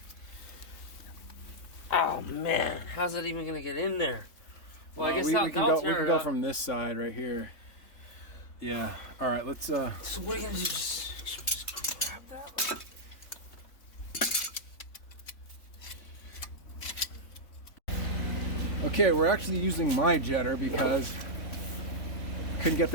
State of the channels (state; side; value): late; right; 3.5 ms